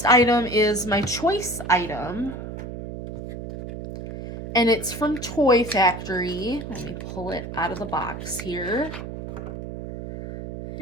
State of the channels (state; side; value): noise; right; hum, 9 dB below the sound